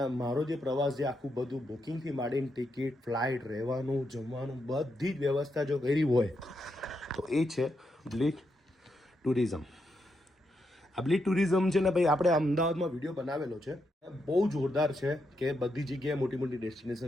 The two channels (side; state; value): both; normal; correlation 0.82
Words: મારો જે પ્રવાસ છે આખું બધું બુકિંગથી માંડીને ટિકિટ, ફ્લાઇટ, રહેવાનું, જમવાનું બધી જ વ્યવસ્થા જો કરી હોય તો એ છે બ્લીચ ટુરિઝમ. આ બ્લીચ ટુરિઝમ છે ને ભાઈ, આપણે અમદાવાદમાં વિડીયો બનાવેલો છે, બહુ જોરદાર છે કે બધી જગ્યાએ મોટી મોટી